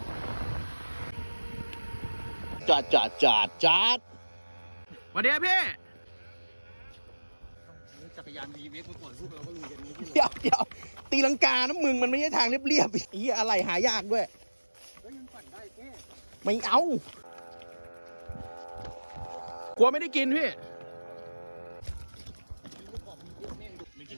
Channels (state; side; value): inverted; both; correlation -1.00